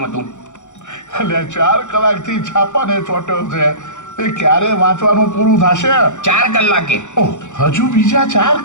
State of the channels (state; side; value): late; right; 0.84 ms